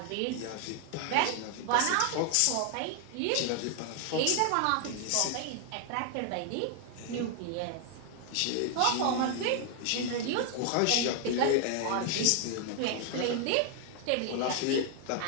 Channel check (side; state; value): both; different; correlation 0.00